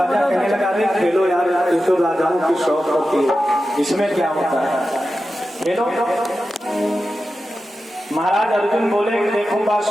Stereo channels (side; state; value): both; normal; correlation 0.92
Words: कहने लगा, अरे खेलो यार, ये तो राजाओं की शौक होती है, इसमें क्या होता है, खेलो। महाराज अर्जुन बोले, देखो